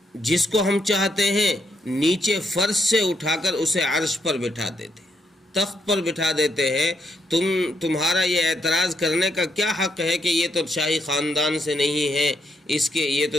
جس کو ہم چاہتے ہیں نیچے فرش سے اٹھا کر اسے عرش پر بٹھا دیتے ہیں، تخت پر بٹھا دیتے ہیں. تمہارا یہ اعتراض کرنے کا کیا حق ہے کہ یہ تو شاہی خاندان سے نہیں ہے، یہ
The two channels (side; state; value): both; normal; correlation 0.77